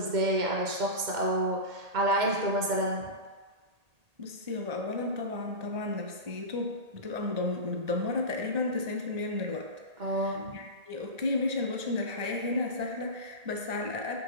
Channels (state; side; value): late; left; 1.8 ms